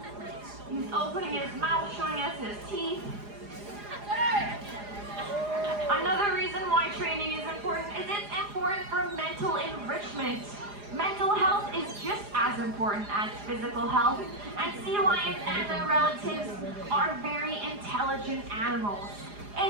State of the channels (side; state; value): left; late; 4.9 ms